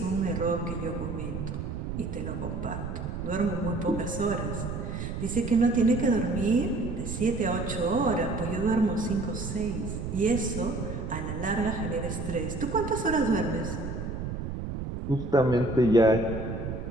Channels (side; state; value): right; noise; rumble, 5 dB below the sound